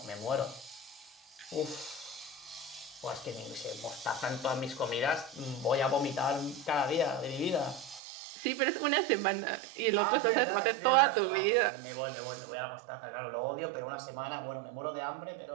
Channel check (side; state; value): left; drops out; at 8.0 s